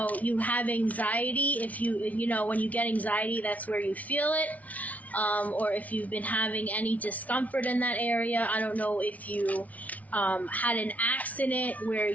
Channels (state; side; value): late; right; 0.071 ms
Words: have anxiety, if you when you get anxiety, that's where you feel it, or if you've been having any discomfort in that area. I don't know if you had an accident where